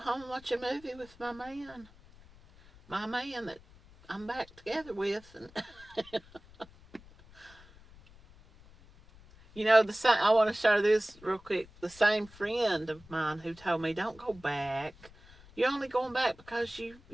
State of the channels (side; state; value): left; noise; rumble, 23 dB below the sound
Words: and watch a movie with my man. My man that I'm back together with. And I want to share this real quick. The same friend of mine who told me, don't go back. You're only going back because